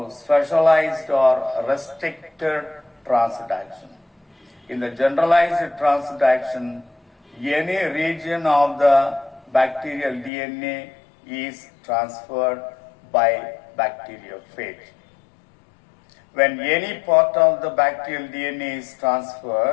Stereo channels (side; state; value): right; drops out; at 10.3 s